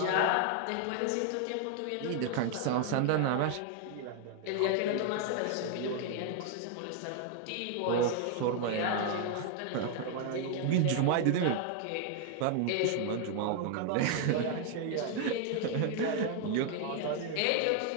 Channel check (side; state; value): both; different; correlation 0.00